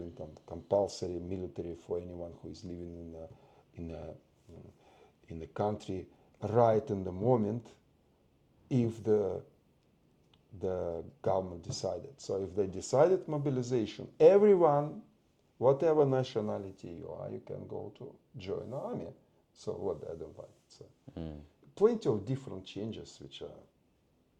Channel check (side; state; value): both; identical; correlation 1.00